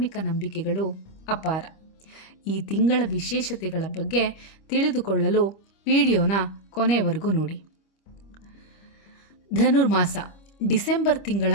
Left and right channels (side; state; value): right; late; 25 ms